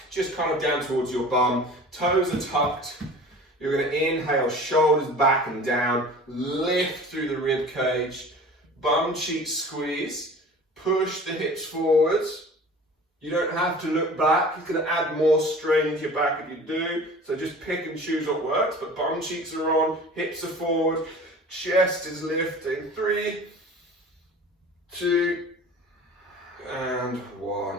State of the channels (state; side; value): normal; both; correlation 0.42